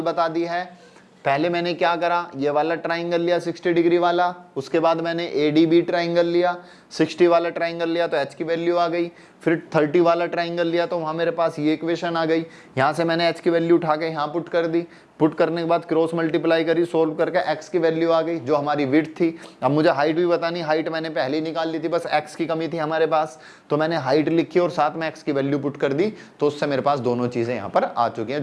बता दी है। पहले मैंने क्या करा, ये वाला ट्राइंगल लिया 60 डिग्री वाला, उसके बाद मैंने ADB ट्राइंगल लिया, 60 वाला ट्राइंगल लिया तो h की वैल्यू आ गई। फिर 30 वाला ट्राइंगल लिया तो वहाँ मेरे पास ये इक्वेशन आ गई। यहाँ से मैंने h की वैल्यू उठा के यहाँ पुट कर दी, पुट करने के बाद क्रॉस मल्टीप्लाई करी, सोल्व करके x की वैल्यू आ गई जो हमारी विड्थ थी। अब मुझे हाइट भी बतानी, हाइट मैंने पहले ही निकाल ली थी, बस x की कमी थी हमारे पास, तो मैंने हाइट लिखी और साथ में x की वैल्यू पुट कर दी, तो उससे मेरे पास दोनों चीजें यहाँ पर आ चुकी हैं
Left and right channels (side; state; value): both; identical; correlation 1.00